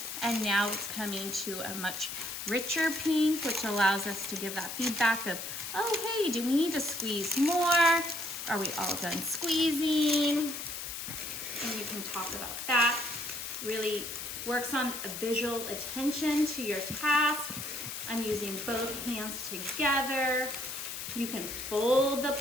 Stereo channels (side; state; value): left; noise; hiss, 6 dB below the sound